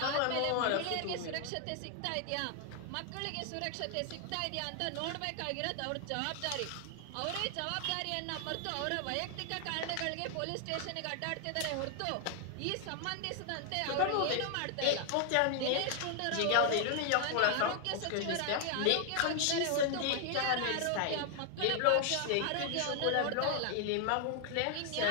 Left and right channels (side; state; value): both; different; correlation 0.00